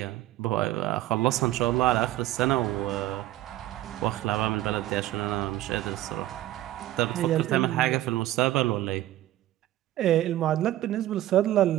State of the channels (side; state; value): left; quieter; 14.7 dB